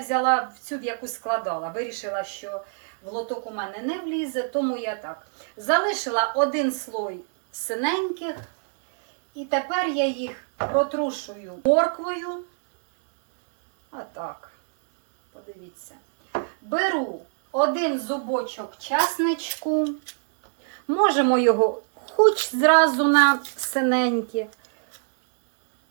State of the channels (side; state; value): left; silent; digital silence